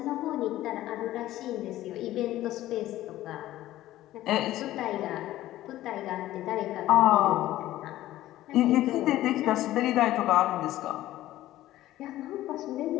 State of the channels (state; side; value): quieter; right; 14.8 dB